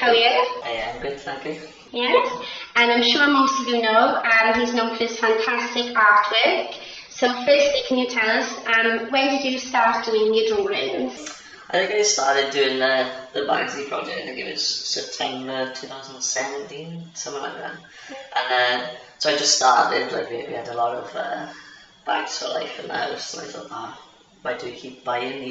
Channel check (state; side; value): identical; both; correlation 1.00